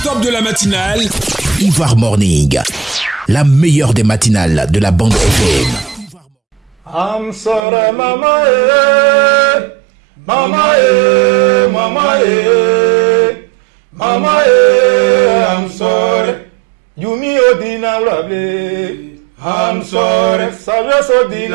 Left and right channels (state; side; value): drops out; left; at 7.6 s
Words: top de la matinale. Ivoire Morning. La meilleure des matinales de la bande FM. I'm sorry, mama, eh. Mama, eh, mama, eh. Mama, eh, I'm sorry. Yumi odina urable. I'm sorry. Sagesse